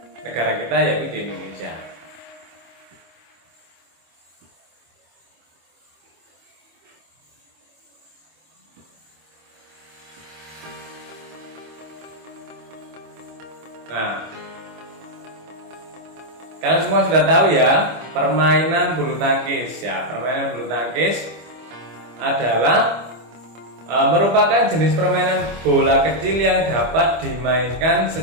negara kita, yaitu di Indonesia. Nah, kalian semua sudah tahu ya, permainan bulu tangkis ya. Permainan bulu tangkis adalah merupakan jenis permainan bola kecil yang dapat dimainkan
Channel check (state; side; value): late; left; 25 ms